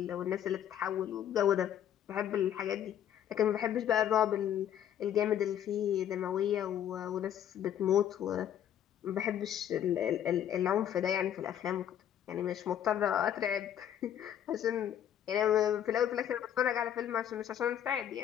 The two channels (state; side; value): quieter; right; 10.2 dB